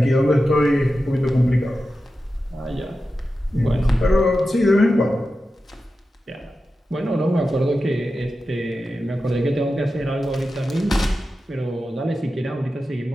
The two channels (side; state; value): both; normal; correlation 0.92